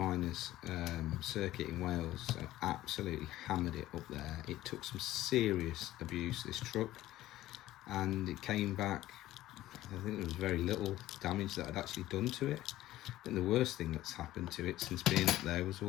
circuit in Wales, so absolutely hammered it up there. It took some serious abuse, this truck, and it came back. I think there was very little damage that I'd actually done to it. I think the worst thing that's happened to it since being up there was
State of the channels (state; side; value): quieter; right; 15.2 dB